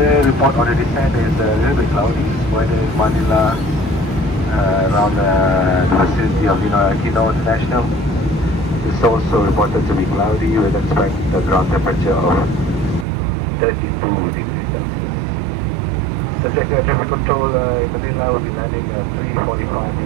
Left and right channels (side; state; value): left; drops out; at 13.1 s